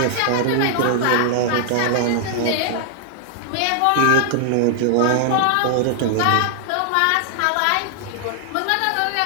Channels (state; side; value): different; both; correlation -0.01